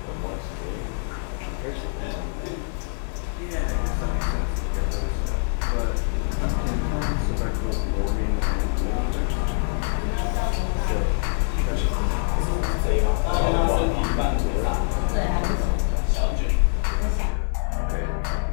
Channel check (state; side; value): silent; right; 62 dB below the other